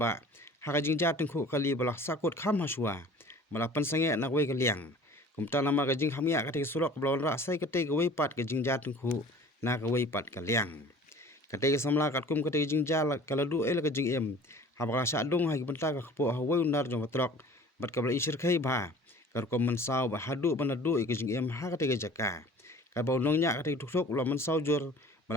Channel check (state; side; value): normal; both; correlation 0.45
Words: ha ka jing ja tengku kali balak sakut kham hasua balak pansange nak wei kaliang kumta nama ka jing hamya kate surok blon ra sai kate wei pat ka jing ja tengku na ka wei pat kaliang kate samla katkum kate jing ja kala du la ka jing em ha ba sa dong ha ki benta ka kpo ha wei unar jong trok bat ka bla isir khai ba kar ko man sau ba hadu banadu ka jing em ha kate jaka ka ba nong nya kate tuk lo man sau jor